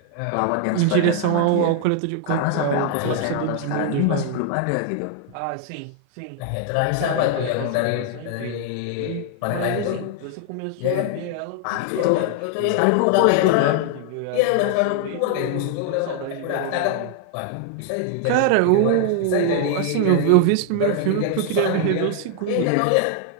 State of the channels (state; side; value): different; both; correlation 0.00